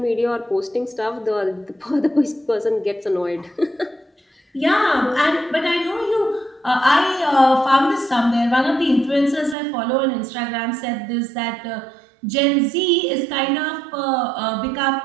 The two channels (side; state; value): left; drops out; at 9.6 s